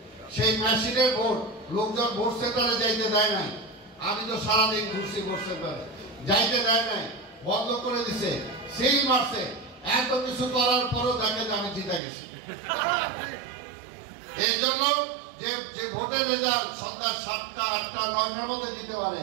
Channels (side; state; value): left; drops out; at 12.0 s